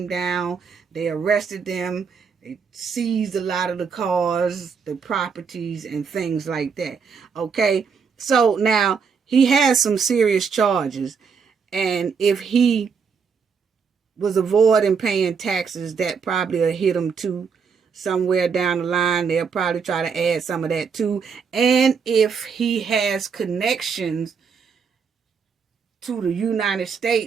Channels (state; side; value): quieter; left; 5.9 dB